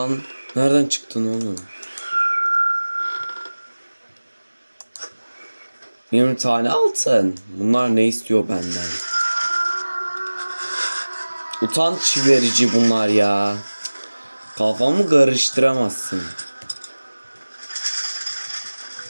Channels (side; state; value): both; inverted; correlation -1.00